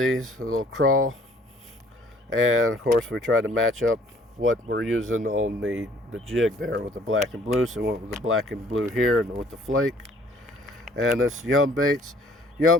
a little Craw. And of course we try to match up what we're using on the jig there with the black and blue. So we went with the black and blue here and with the flake. And this Yum Baits.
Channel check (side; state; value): both; normal; correlation 0.58